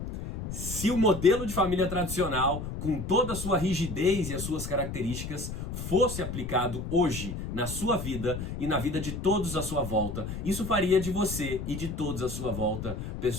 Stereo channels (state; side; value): noise; left; rumble, 6 dB below the sound